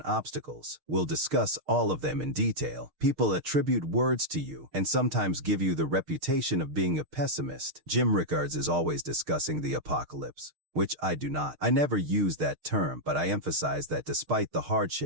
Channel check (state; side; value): late; left; 6.5 ms